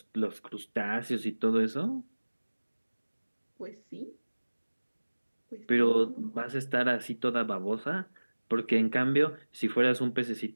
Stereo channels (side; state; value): both; inverted; correlation -1.00